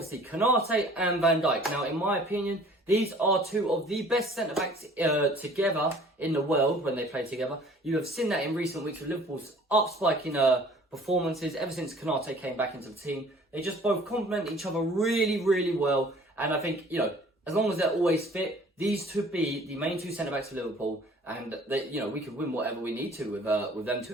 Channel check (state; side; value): normal; both; correlation 0.52